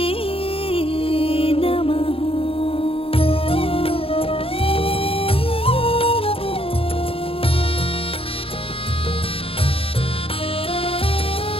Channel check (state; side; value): late; right; 0.27 ms